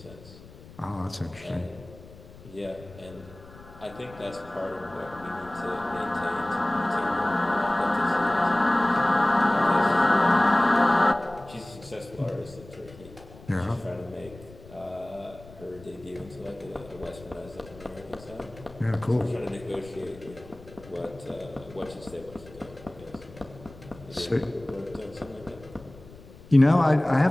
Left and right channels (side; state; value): left; noise; rumble, 20 dB below the sound